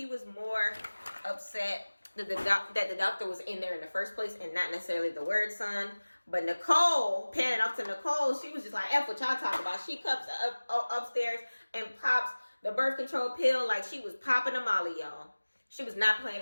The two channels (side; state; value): both; inverted; correlation -1.00